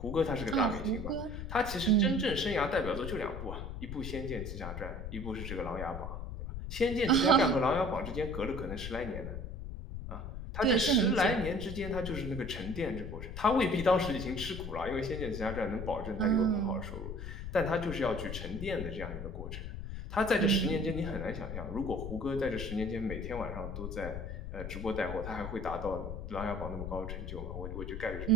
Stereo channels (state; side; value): noise; left; rumble, 7 dB below the sound